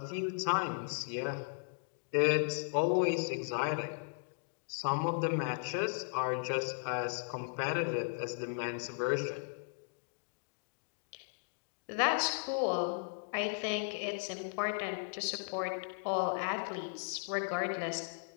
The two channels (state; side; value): silent; right; digital silence